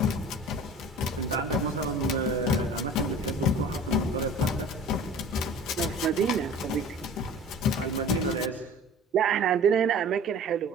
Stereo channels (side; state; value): both; normal; correlation 0.42